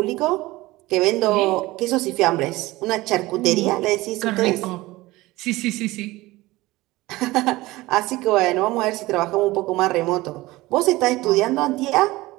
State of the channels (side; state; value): left; quieter; 19.4 dB